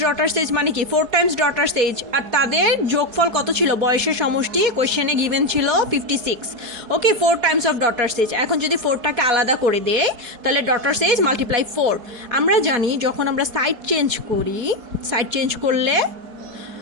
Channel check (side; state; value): left; late; 4.7 ms